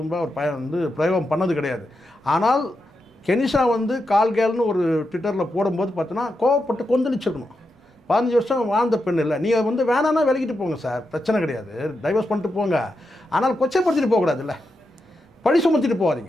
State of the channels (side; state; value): both; normal; correlation 0.86